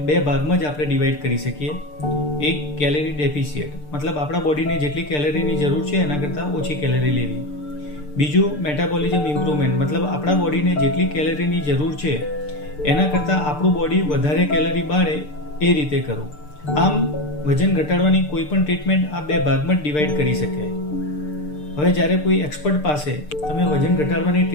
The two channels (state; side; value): late; right; 6.7 ms